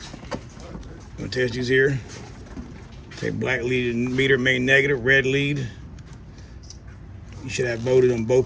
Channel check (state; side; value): identical; both; correlation 1.00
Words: Gonna test these here. Take black lead meter, main negative, red lead. You should have voltage on